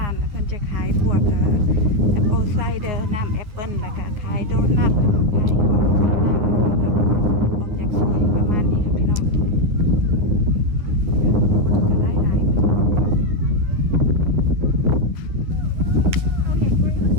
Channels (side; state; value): left; late; 9.7 ms